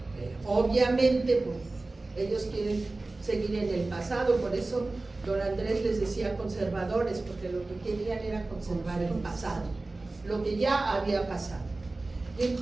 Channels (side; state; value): left; quieter; 3.2 dB